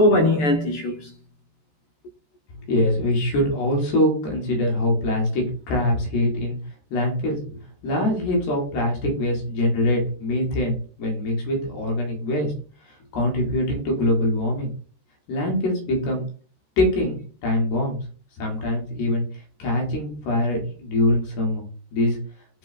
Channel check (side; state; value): right; late; 13 ms